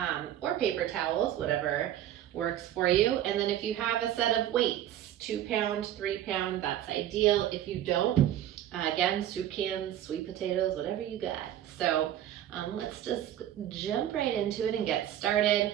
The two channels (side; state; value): left; quieter; 11.8 dB